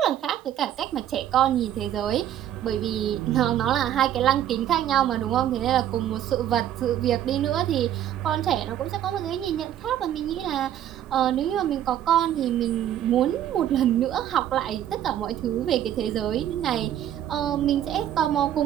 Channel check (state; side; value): quieter; left; 11.2 dB